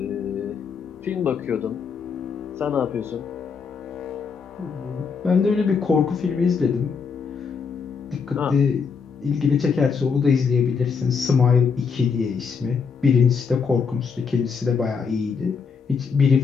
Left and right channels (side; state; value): right; quieter; 5.7 dB